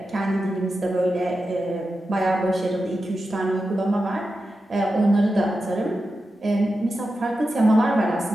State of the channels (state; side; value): normal; both; correlation 0.90